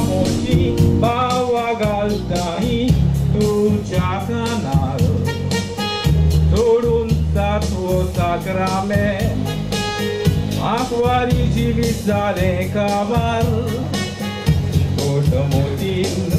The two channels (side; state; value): both; identical; correlation 1.00